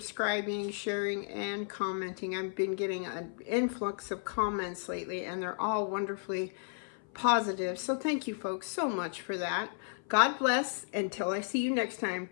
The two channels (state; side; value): silent; right; 55 dB below the other